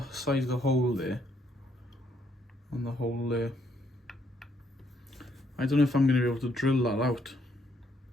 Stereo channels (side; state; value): both; normal; correlation 0.71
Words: size of the hole there? And the hole there. I don't know if I'm going to be able to drill that out.